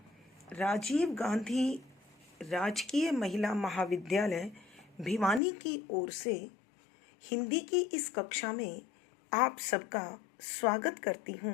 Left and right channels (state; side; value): drops out; right; at 5.4 s